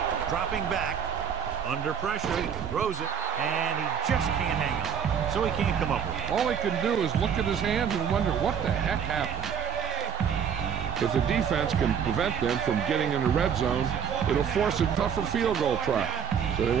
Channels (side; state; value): left; quieter; 7.3 dB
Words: Dropping back. Under pressure. Throws it. And he just can't hang on. So he can't come up with it. All he can do is look at his hands and wonder what the heck happened. If the defense can prevent them from getting in the red zone, it'll force a tougher field goal try. So they